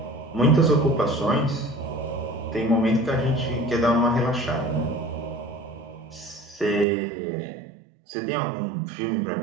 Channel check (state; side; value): drops out; left; at 6.9 s